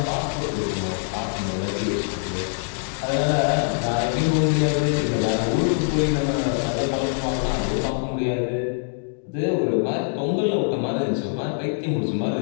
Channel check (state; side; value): silent; right; digital silence